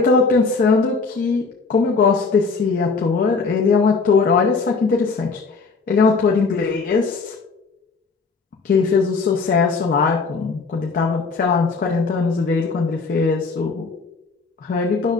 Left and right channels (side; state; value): right; quieter; 4.4 dB